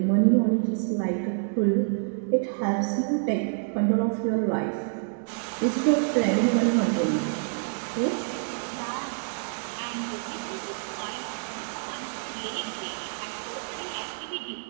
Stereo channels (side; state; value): left; silent; digital silence